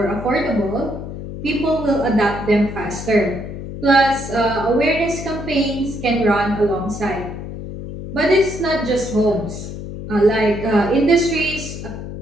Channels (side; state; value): left; noise; hum, 9 dB below the sound